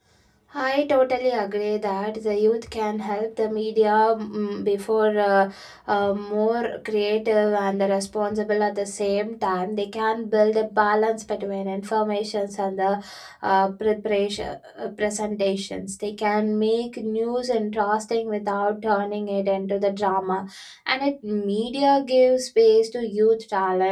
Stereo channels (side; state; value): both; identical; correlation 1.00